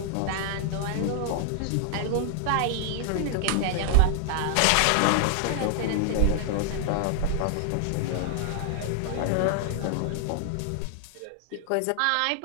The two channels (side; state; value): both; different; correlation 0.00